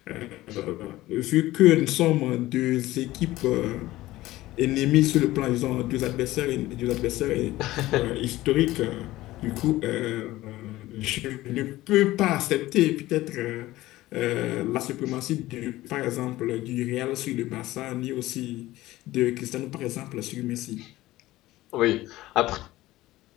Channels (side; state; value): right; quieter; 17.0 dB